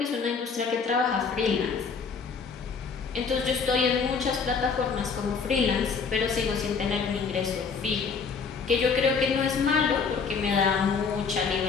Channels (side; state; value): right; quieter; 5.5 dB